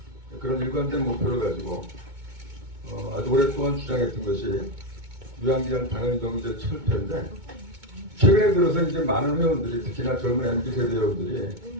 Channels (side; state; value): left; late; 2.2 ms